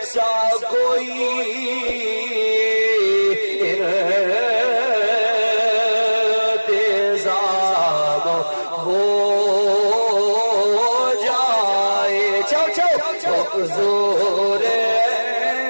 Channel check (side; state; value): both; inverted; correlation -1.00